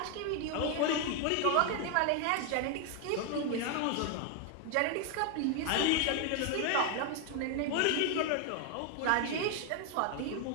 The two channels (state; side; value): different; both; correlation 0.00